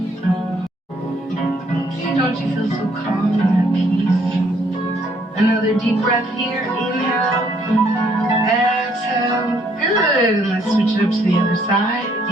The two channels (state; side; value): normal; both; correlation 0.67